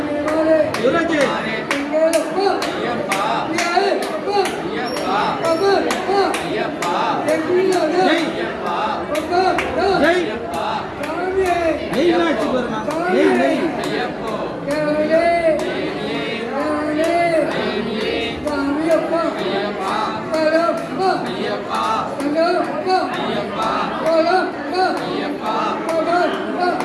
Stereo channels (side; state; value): both; identical; correlation 1.00